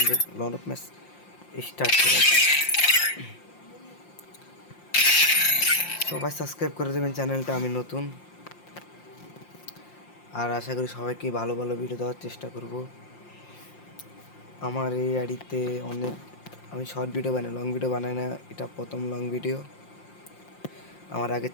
লন অফ ম্যাচ স্টার্ট করা। সবাই সাবস্ক্রাইব করে দেবেন চ্যানেলটা, আমি নতুন। আর আশা করি সবাইকে ভালো ভালো ভিডিও দেওয়ার চেষ্টা করব। আমার এই আইডিতে আমি শর্ট ভিডিও বানাই, লং ভিডিও বানাই না। এটা প্রথম লং ভিডিও। আমার আগের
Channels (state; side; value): late; right; 5.7 ms